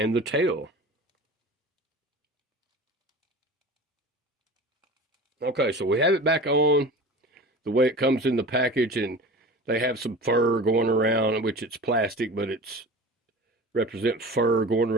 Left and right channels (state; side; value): normal; both; correlation 0.36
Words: the tail. Okay, so we have it back on the way it comes in the package, and they have some fur going around, which it's plastic, but it's represent fur going